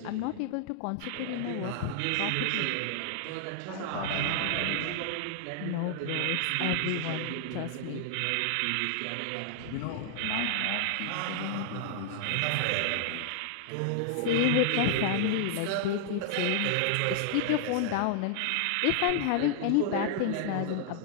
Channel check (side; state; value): both; different; correlation -0.01